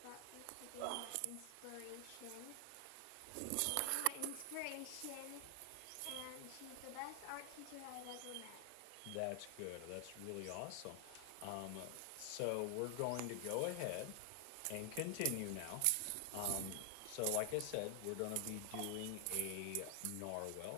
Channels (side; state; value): both; different; correlation 0.00